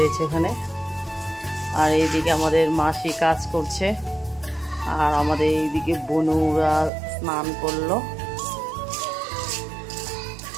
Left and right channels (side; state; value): left; drops out; at 6.9 s